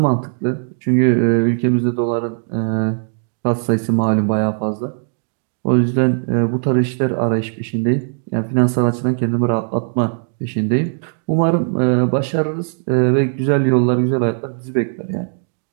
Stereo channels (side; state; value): left; silent; digital silence